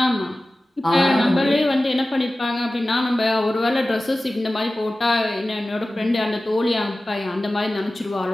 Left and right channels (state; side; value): normal; both; correlation 0.96